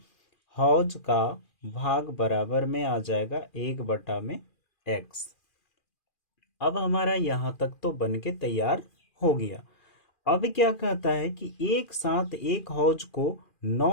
हौज का भाग बराबर में आ जाएगा 1/x। अब हमारा यहाँ तक तो बन के तैयार हो गया। अब क्या कहता है कि एक साथ एक हौज को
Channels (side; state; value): right; late; 2.4 ms